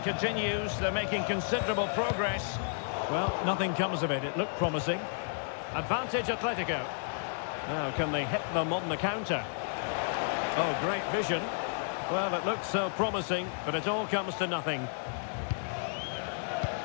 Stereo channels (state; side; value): silent; right; digital silence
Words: continues. They're making considerable progress. Well, nothing comes of it. It looked promising. Advantage Atletico. Now, can they hit them on the counter? Oh, great vision. Well, it looked so promising, but it all comes to nothing.